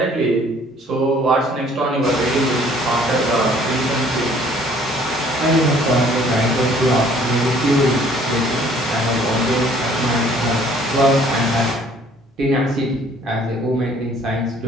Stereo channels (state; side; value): normal; both; correlation 0.57